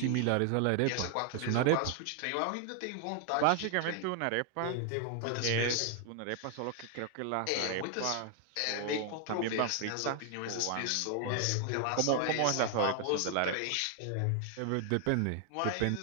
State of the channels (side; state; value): both; different; correlation 0.00